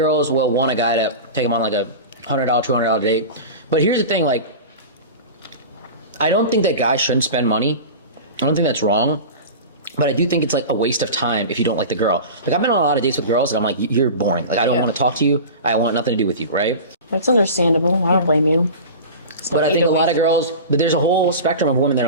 will want a guy to take them on like a $100, $200 date. But here's the thing, like, I don't think that guys shouldn't spend money. I don't think that's wrong. But I do think it's like a waste of time if you don't like the girl. Like, I've been on a lot of dates with girls and I'm like, you're boring. Like, I don't want to talk to you. I want nothing to do with you, right? That's understandable. I don't blame you. But I think a lot of girls, but there's a whole spectrum of women that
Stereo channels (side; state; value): both; inverted; correlation -0.31